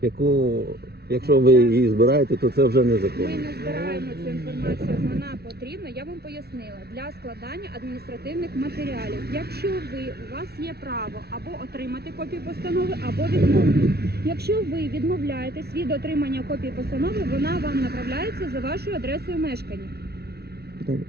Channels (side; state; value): left; late; 0.46 ms